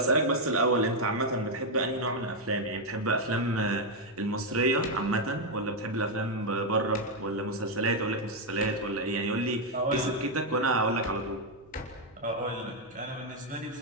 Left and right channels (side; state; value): right; noise; hum, 28 dB below the sound